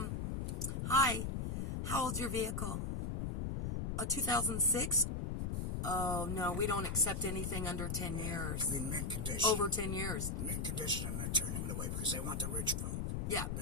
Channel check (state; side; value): noise; left; rumble, 1 dB below the sound